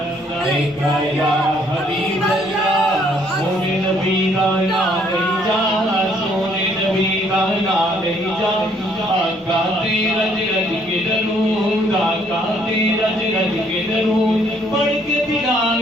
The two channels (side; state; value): both; normal; correlation 0.66